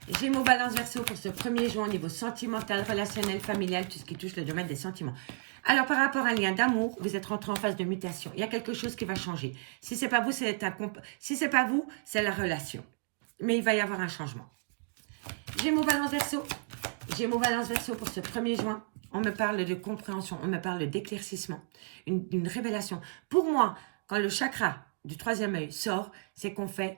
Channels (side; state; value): left; silent; 56 dB below the other